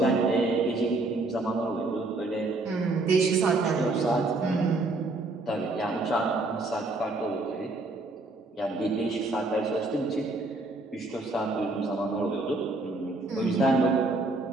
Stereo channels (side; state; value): left; quieter; 3.1 dB